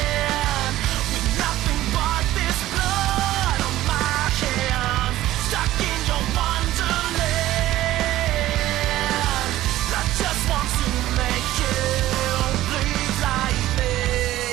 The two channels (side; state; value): left; quieter; 15.0 dB